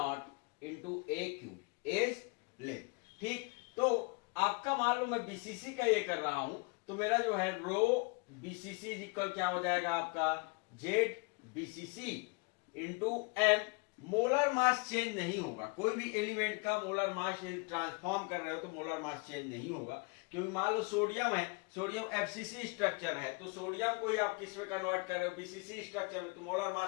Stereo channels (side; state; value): right; quieter; 31.2 dB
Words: into A cube edge length. ठीक, तो आपका मान लो मैं बीसीसी का ये कर रहा हूं तो मेरा जो है रो बीसीसी इज इक्वल क्या हो जाएगा आपका Z BCC into M. Molar mass change नहीं होगा, कोई भी एलिमेंट का मोलर मास ट्रांसफॉर्म कर रहे हो तो मोलर मास चेंज नहीं होगा, क्योंकि मान लो सोडियम है, सोडियम एफसीसी स्ट्रक्चर है तो सोडियम को ही आप किस में कन्वर्ट कर रहे हो, बीसीसी स्ट्रक्चर में, तो मोलर